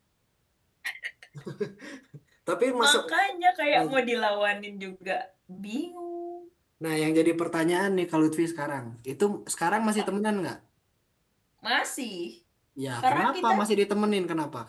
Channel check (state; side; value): identical; both; correlation 1.00